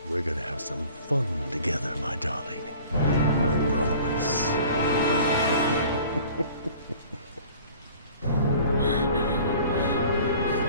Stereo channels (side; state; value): both; inverted; correlation -0.48